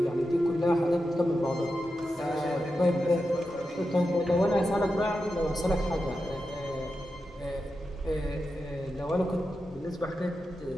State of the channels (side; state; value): both; normal; correlation 0.89